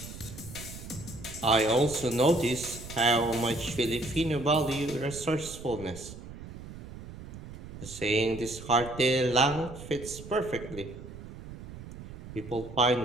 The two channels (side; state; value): right; noise; rumble, 13 dB below the sound